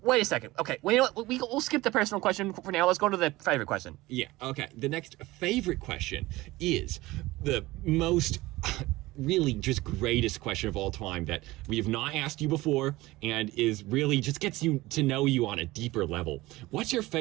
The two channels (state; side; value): quieter; left; 19.2 dB